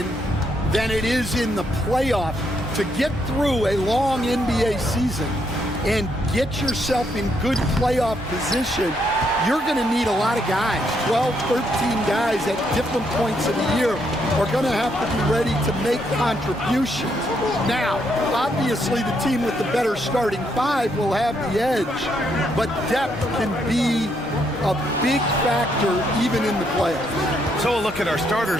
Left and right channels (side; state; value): both; normal; correlation 0.75